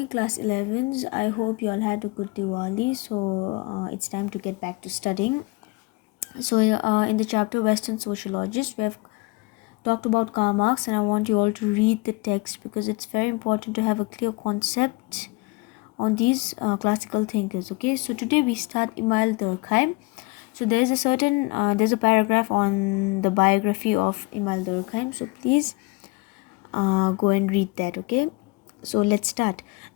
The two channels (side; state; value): right; quieter; 25.8 dB